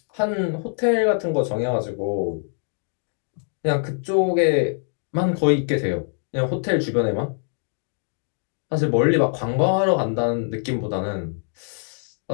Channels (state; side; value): silent; right; 63 dB below the other